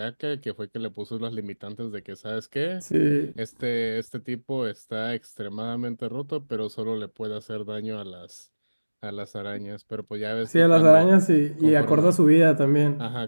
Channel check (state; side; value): inverted; both; correlation -1.00